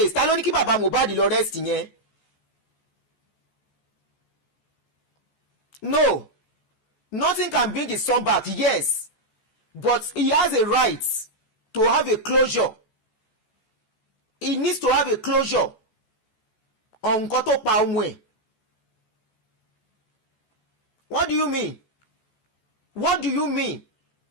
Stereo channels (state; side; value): late; right; 14 ms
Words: Ta ló ní kí Baba Mohbad lọ arrest yẹn? No, nothing can bring his son back, yes, but he has a right to have a closure. He needs to have a closure on nǹkan tó pa ọmọ ẹ̀. What do you mean? What do you mean?